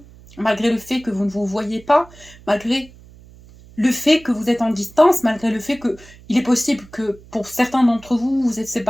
malgré le fait que vous ne vous voyez pas, malgré le fait que vous êtes en distance, malgré le fait que il est possible que pour certains d'entre vous, vous êtes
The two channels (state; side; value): noise; right; hum, 23 dB below the sound